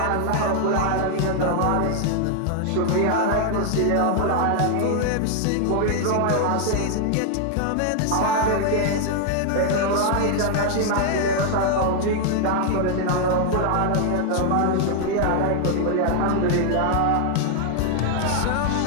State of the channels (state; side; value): different; both; correlation 0.00